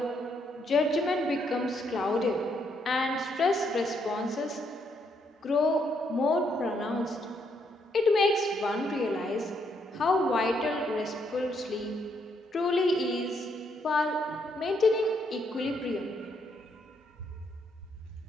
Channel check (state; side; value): normal; both; correlation 0.74